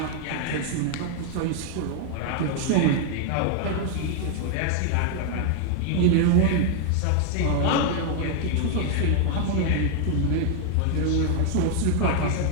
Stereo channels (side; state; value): both; different; correlation 0.00